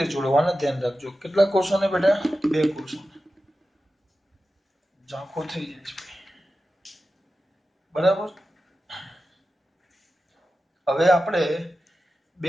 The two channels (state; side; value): normal; both; correlation 0.93